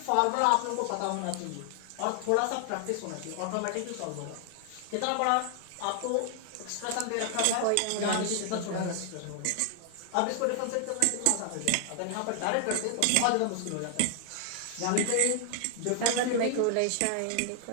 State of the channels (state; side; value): different; both; correlation 0.00